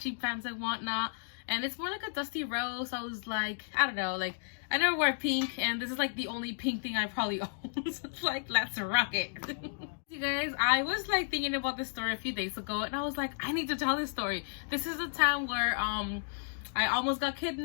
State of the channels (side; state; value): right; silent; digital silence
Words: pants and whatnot, and it's more like a dusty rose. I was like, I don't know, like I never wear pink, and this is like the only pink thing I probably own. So it's like, let's rock it. You guys, I was like thinking about this story a few days ago, and I was like, I need to tell this story. This is a time where I almost got